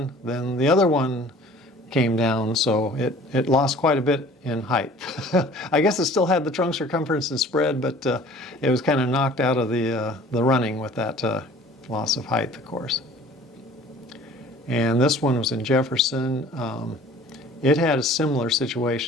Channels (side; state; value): both; normal; correlation 0.49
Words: then the other one came down, so it lost quite a bit in height. I guess it still had the trunk circumference and spread, but it was kind of knocked out of the running with that loss of height, of course. And this one was in Jefferson. It had a similar